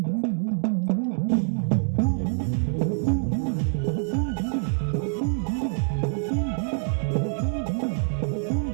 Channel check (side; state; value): left; silent; 61 dB below the other